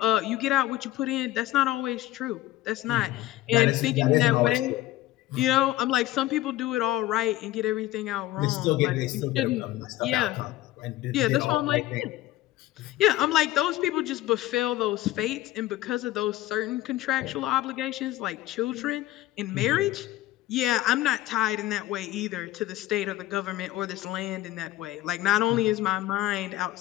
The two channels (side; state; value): right; quieter; 15.9 dB